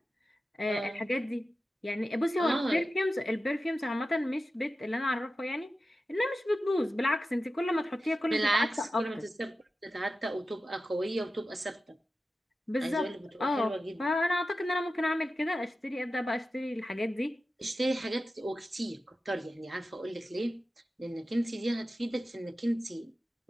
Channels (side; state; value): both; normal; correlation 0.93